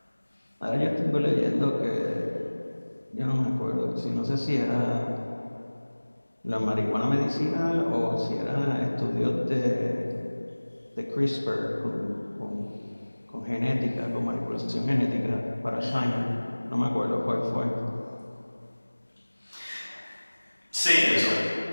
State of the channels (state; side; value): inverted; both; correlation -1.00